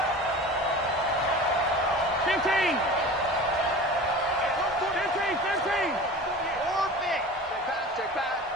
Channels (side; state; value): both; normal; correlation 0.36